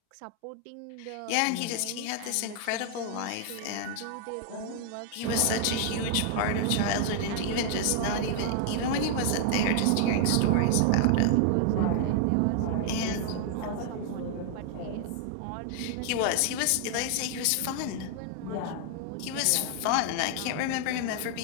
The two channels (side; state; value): both; different; correlation 0.00